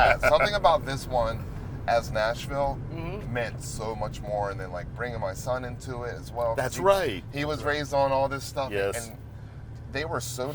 about this one as Nashville meant so much more, and then like bringing my son into it as well. That's right. He was raised on all this stuff, Yes. and they were so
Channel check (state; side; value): identical; both; correlation 1.00